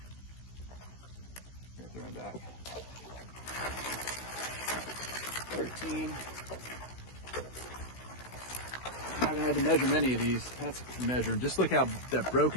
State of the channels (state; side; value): late; right; 16 ms